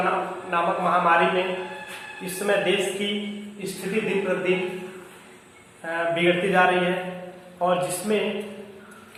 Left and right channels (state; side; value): identical; both; correlation 1.00